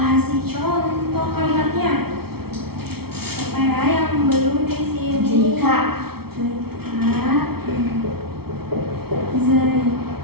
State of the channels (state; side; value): late; left; 0.95 ms